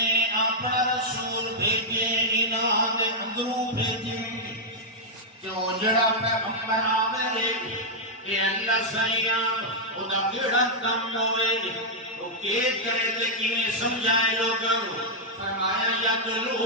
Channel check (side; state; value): both; normal; correlation -0.05